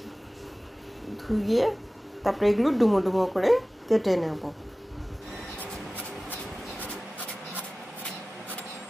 ধুয়ে তারপরে এগুলো ডুমো ডুমো করে কেটে নেব।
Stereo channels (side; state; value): both; normal; correlation 0.97